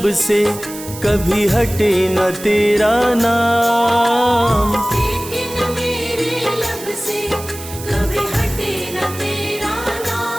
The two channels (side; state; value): right; noise; hiss, 13 dB below the sound